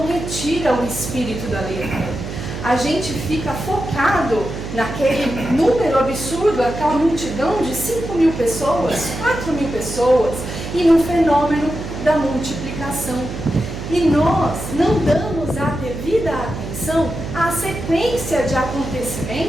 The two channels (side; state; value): right; noise; hum, 8 dB below the sound